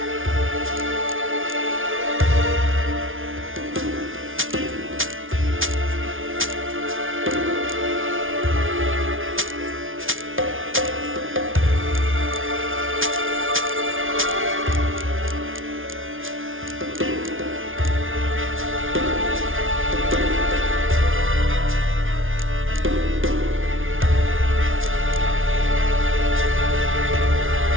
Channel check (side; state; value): left; late; 0.58 ms